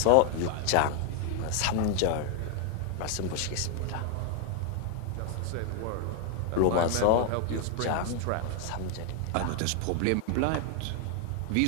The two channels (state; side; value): different; both; correlation 0.00